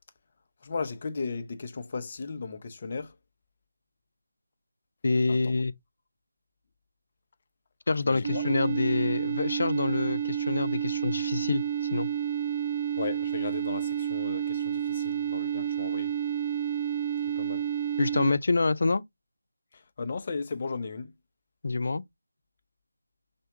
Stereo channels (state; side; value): inverted; both; correlation -0.74